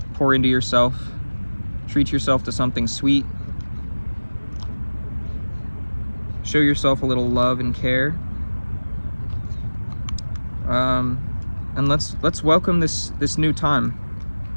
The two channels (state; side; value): inverted; both; correlation -1.00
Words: pour into yourself, treat yourself to something sweet, show yourself a little love and care, and let's welcome this new time.